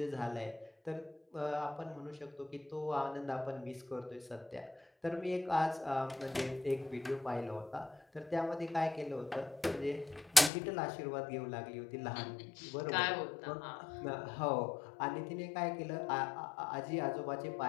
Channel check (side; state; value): right; drops out; at 10.5 s